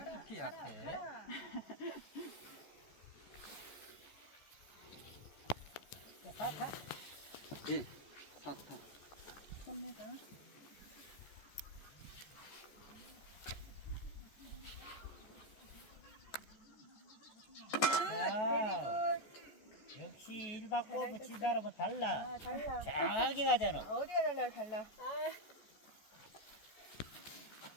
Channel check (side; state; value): right; late; 14 ms